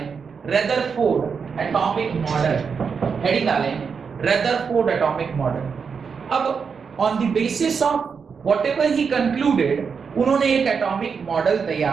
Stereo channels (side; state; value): left; quieter; 5.9 dB